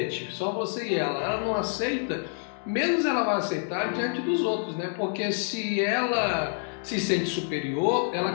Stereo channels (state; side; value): silent; right; digital silence